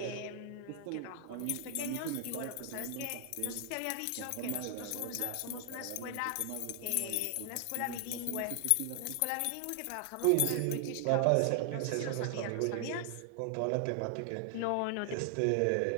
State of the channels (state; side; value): different; both; correlation 0.00